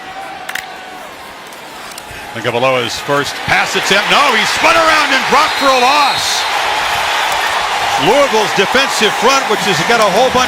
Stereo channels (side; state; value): both; identical; correlation 1.00